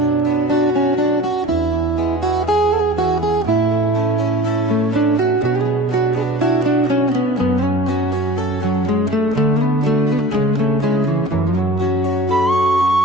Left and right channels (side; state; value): both; normal; correlation 0.39